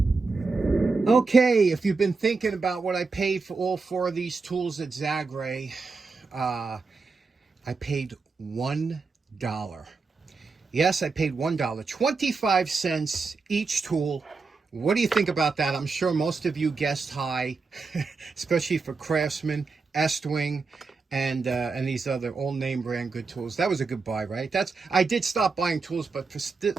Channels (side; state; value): left; quieter; 4.4 dB